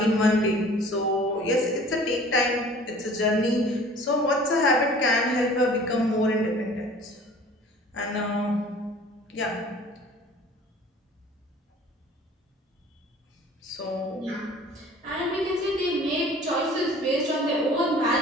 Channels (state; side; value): normal; both; correlation 0.48